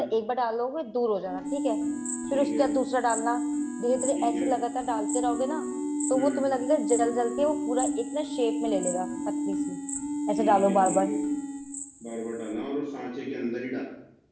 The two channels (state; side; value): identical; both; correlation 1.00